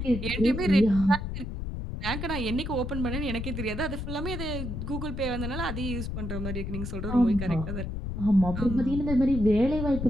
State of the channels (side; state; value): left; noise; rumble, 5 dB below the sound